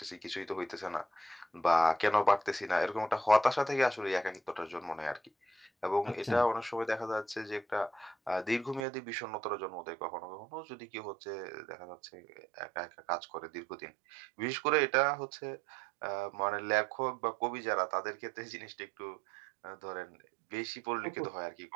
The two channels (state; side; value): drops out; left; at 8.8 s